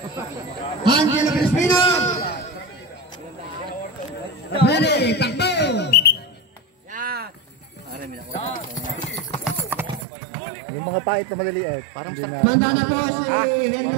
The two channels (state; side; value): drops out; left; at 10.1 s